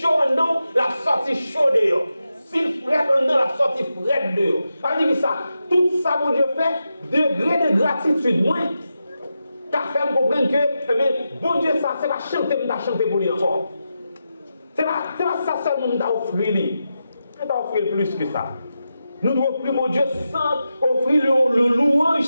dedans, la sortie chaude dehors. S'il frette en dedans, la sortie frette dehors. Ça veut dire ça, tout ça, mon Dieu fait, degré de gratitude, moi, qu'a fait comprendre que, eh bien, bon Dieu, ça, c'est pas chanter pour lui encore. C'est pas ça seulement que offrir lui. On t'a offrir plus que ça. Nous devons offrir, mon Dieu, sans offrir le louange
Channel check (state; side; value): inverted; both; correlation -0.89